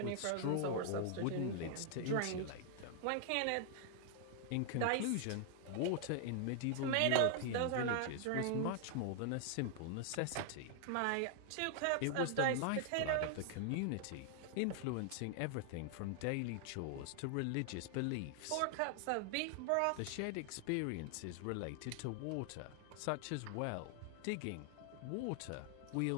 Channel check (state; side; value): different; both; correlation 0.00